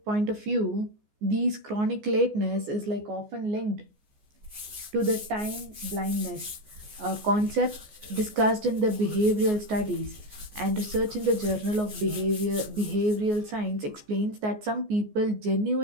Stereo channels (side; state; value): left; late; 14 ms